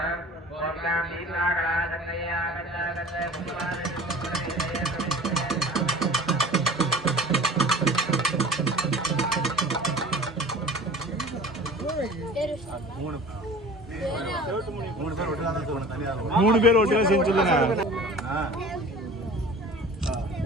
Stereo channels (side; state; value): both; normal; correlation 0.42